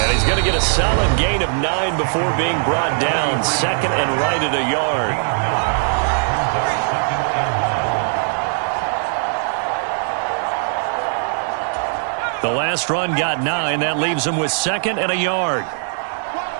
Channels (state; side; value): silent; left; 66 dB below the other